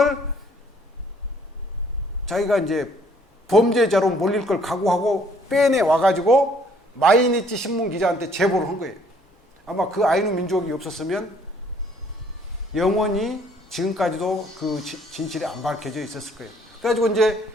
자기가 이제 범죄자로 몰릴 걸 각오하고 빼내 와가지고 마이니치 신문 기자한테 제보를 한 거예요. 아마 그 아이누 민족이 없었으면 영원히 지금까지도 그 진실이 안 밝혀져 있었을 거예요. 그래가지고 이제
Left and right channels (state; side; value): normal; both; correlation 0.62